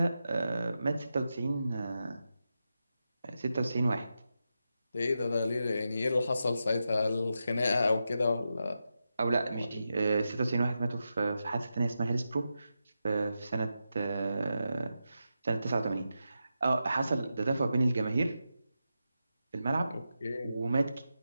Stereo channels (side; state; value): both; inverted; correlation -0.88